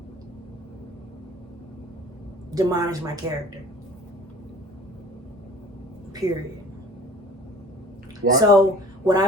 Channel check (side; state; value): both; normal; correlation 0.47